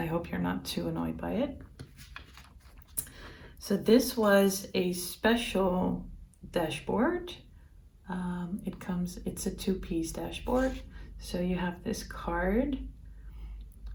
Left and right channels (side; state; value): both; identical; correlation 1.00